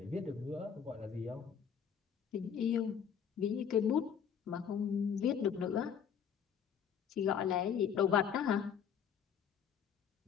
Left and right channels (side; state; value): right; quieter; 7.8 dB